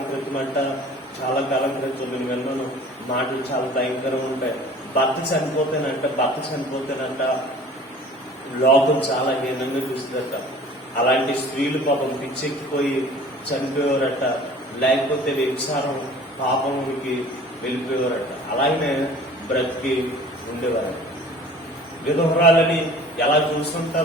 క్రితం నేను విన్నాను మాటలు చాలా భయంకరంగా ఉంటాయి. భర్త చనిపోతేనంట లోకం చాలా హీనంగా చూస్తుందట. అలాంటి స్త్రీలు పాపం పిచ్చెక్కిపోయి చనిపోయేవారట, లేకపోతే వ్యభిచారం పాపమునికి వెళ్ళిపోయేవారట. అలాగనే బ్రతికి ఉండేవారట. విధవరాలని ఎలా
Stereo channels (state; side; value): normal; both; correlation 0.47